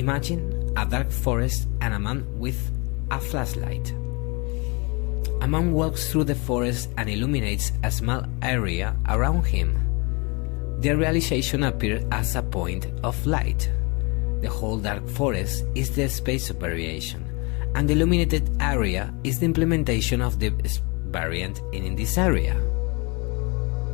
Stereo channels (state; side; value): quieter; right; 29.5 dB